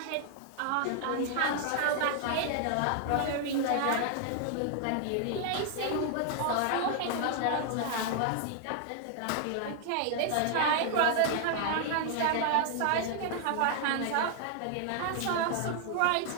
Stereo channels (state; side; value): different; both; correlation 0.00